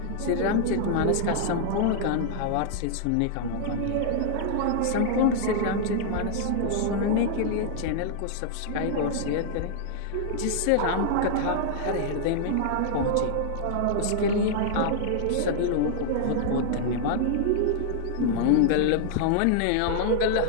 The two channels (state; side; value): different; both; correlation -0.01